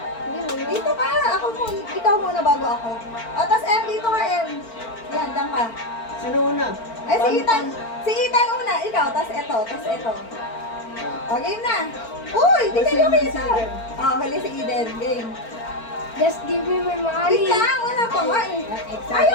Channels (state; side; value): late; right; 4.4 ms